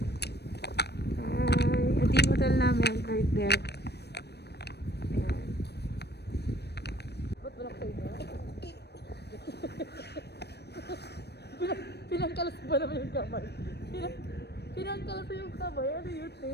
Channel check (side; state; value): right; late; 0.48 ms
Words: Hi. Ito yung hotel namin. Right there. Ayan. Ba't walang kayo na? Pinangkalas ba naman yung kamay? Pinangkalas yung kamay? Ano yun,